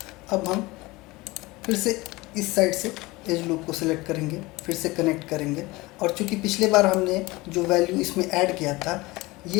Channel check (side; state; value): right; quieter; 21.6 dB